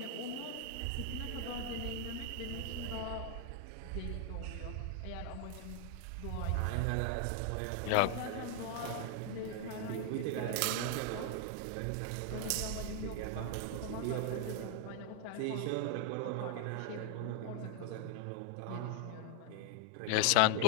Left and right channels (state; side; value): different; both; correlation 0.00